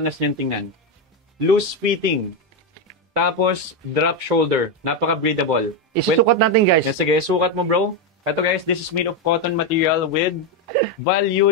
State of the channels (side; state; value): both; normal; correlation 0.07